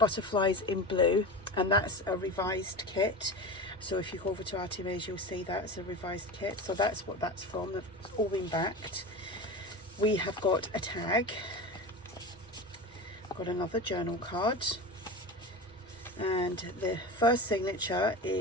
in Blue, and that's a revised kit. So if you go over to ARTYmaze, you'll see that's a revised kit. So that's what that's from. It's all been backed. We have got a tag, got another journal card, and the first signature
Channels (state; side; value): normal; both; correlation 0.28